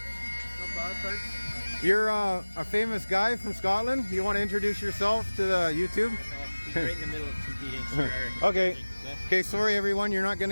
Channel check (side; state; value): both; inverted; correlation -1.00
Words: bad, thanks. You're a famous guy from Scotland. You want to introduce yourself to the YouTube? He's right in the middle of competing. So Okay. Okay, sorry everyone, you're not going